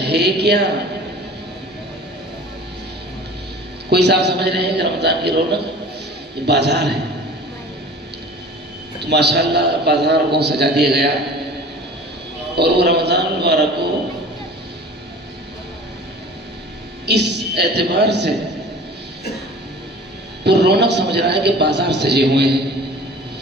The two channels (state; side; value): normal; both; correlation 0.43